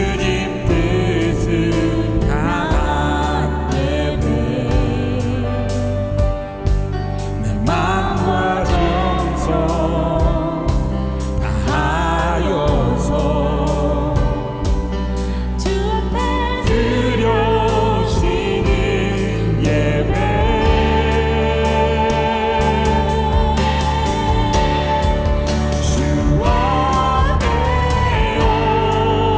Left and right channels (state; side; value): identical; both; correlation 1.00